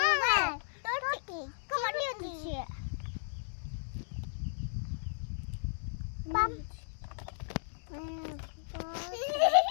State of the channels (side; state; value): right; silent; digital silence